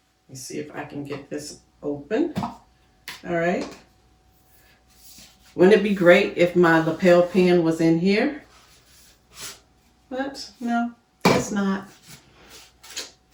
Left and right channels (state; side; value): identical; both; correlation 1.00